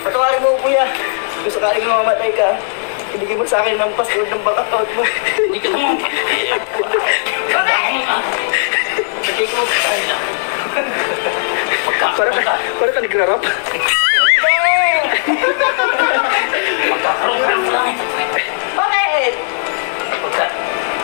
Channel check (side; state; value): right; silent; digital silence